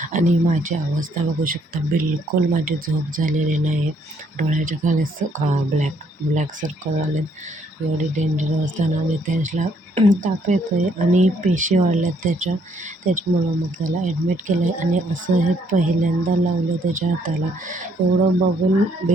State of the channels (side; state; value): both; normal; correlation 0.68